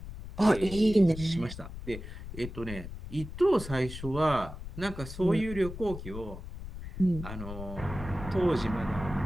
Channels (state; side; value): noise; left; rumble, 11 dB below the sound